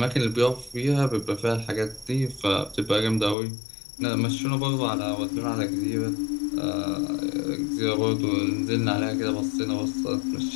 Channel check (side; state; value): right; drops out; at 3.4 s